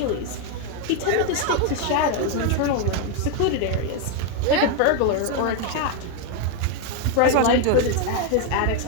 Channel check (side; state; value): both; different; correlation 0.01